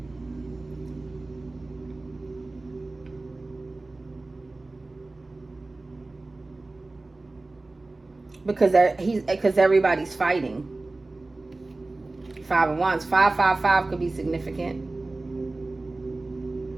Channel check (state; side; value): quieter; left; 3.1 dB